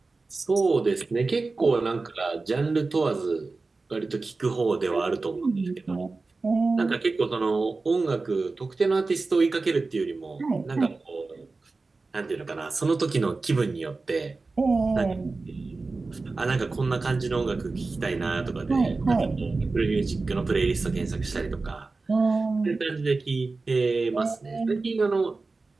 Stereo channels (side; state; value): left; quieter; 3.7 dB